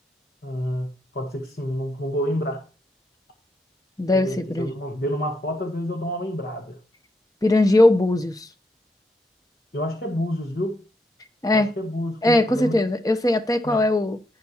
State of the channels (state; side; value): normal; both; correlation 0.80